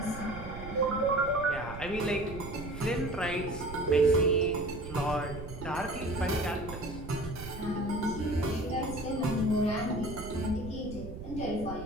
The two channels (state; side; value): noise; right; rumble, 11 dB below the sound